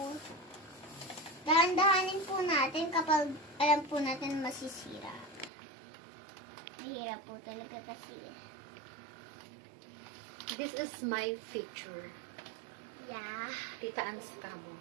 dahan-dahanin po natin kapag alam po natin masisira. Mahirap po talaga kasi. This is my feature. Yeah. Tita An's Camo.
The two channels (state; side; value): drops out; left; at 5.5 s